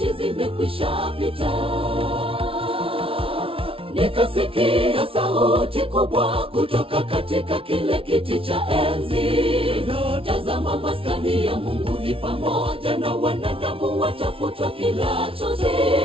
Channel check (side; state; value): left; late; 0.26 ms